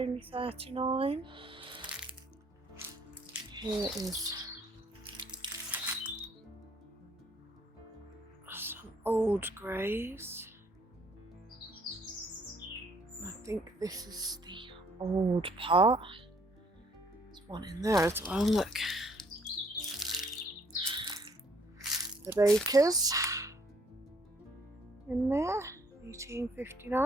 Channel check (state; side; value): normal; both; correlation 0.63